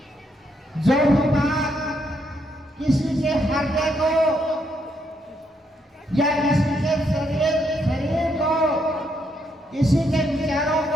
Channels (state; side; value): normal; both; correlation 0.75